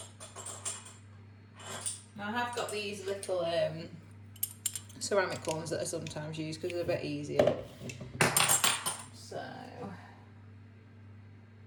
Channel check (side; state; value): both; identical; correlation 1.00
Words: Now I have got these little ceramic ones that I sometimes use because they're a bit easier. So